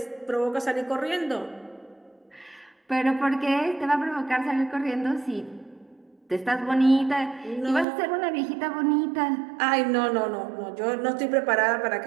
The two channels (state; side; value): drops out; left; at 7.9 s